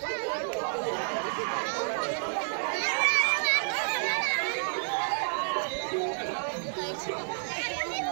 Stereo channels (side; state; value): left; silent; 58 dB below the other